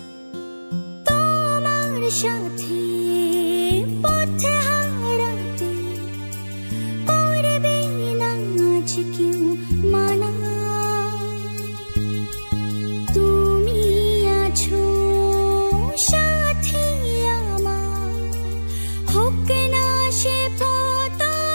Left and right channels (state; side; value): inverted; both; correlation -1.00